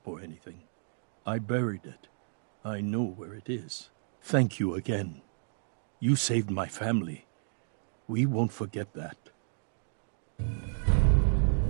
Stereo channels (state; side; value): silent; left; digital silence